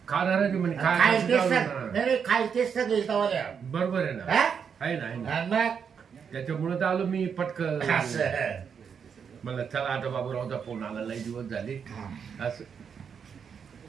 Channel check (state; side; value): quieter; left; 6.9 dB